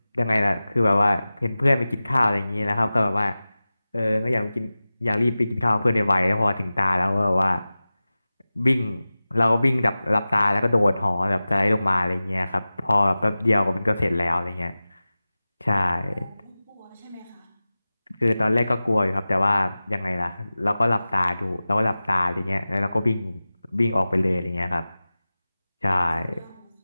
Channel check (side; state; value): both; inverted; correlation -0.97